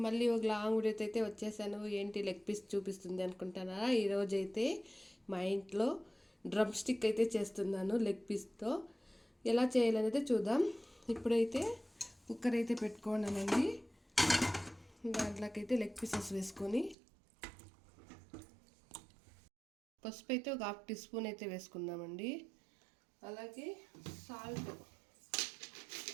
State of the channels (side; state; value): left; drops out; at 16.9 s